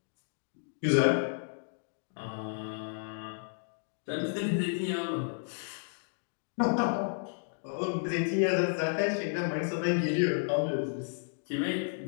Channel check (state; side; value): silent; right; digital silence